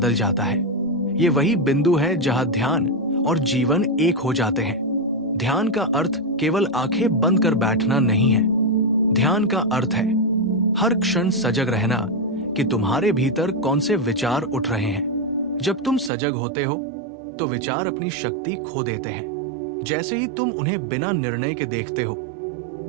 जाता है। ये वही बिंदु है जहां ध्यान और जीवन एक हो जाते हैं। ध्यान का अर्थ केवल आंखें बंद कर बैठना नहीं है। ध्यान का अर्थ है हर क्षण सजग रहना कि तुम्हारे भीतर कौन से विचार उठ रहे हैं। जब तुम सजग होते हो तो विचार अपनी शक्ति खो देते हैं। जैसे ही तुम उन्हें बिना निर्णय के देखते हो,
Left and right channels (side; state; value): left; drops out; at 16.1 s